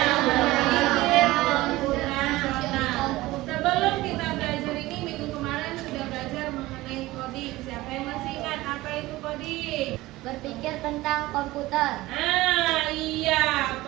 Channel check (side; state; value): left; quieter; 18.5 dB